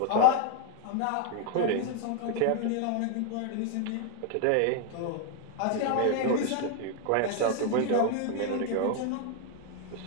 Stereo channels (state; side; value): different; both; correlation 0.00